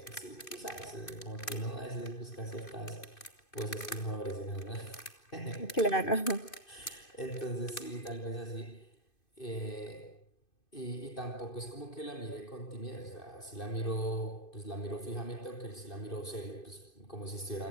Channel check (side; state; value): right; late; 2.5 ms